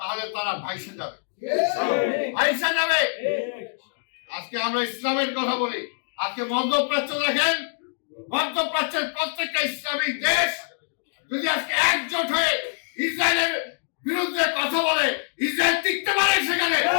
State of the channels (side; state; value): right; silent; digital silence